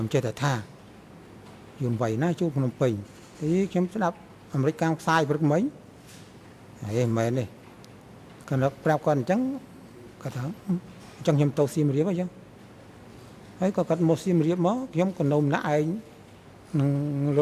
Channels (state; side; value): identical; both; correlation 1.00